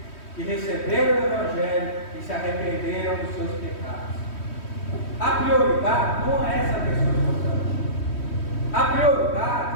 que receberam o Evangelho e se arrependeram dos seus pecados. A prioridade não é essa pessoa importante. A prioridade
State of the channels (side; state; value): right; late; 3.1 ms